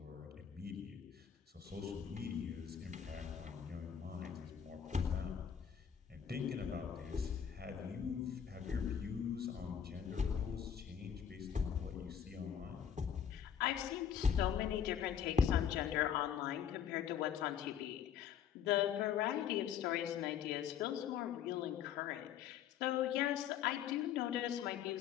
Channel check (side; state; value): right; quieter; 8.5 dB